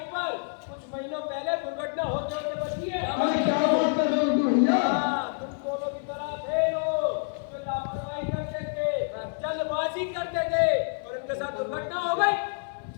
पर कुछ महीनों पहले दुर्घटना होते होते बची है। अरे क्या बात कर रहे हो गुड्डू भैया। तुम दोनों की तरह थे लोग जो लापरवाही करते थे, जल्दबाजी करते थे और उनके साथ दुर्घटना हो गई।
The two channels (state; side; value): silent; right; 60 dB below the other